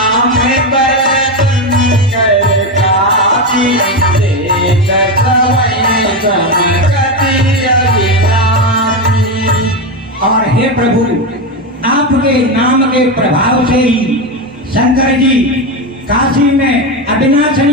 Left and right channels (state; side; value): normal; both; correlation 0.13